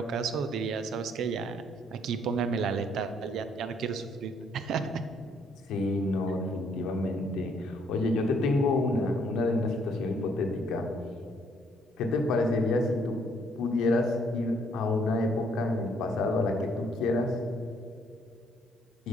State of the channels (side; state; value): both; normal; correlation 0.67